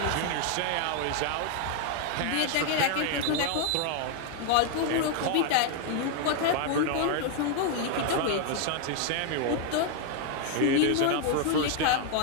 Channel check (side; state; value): both; different; correlation 0.00